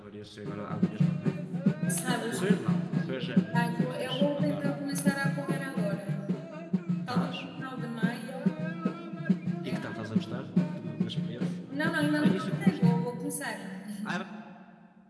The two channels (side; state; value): both; identical; correlation 1.00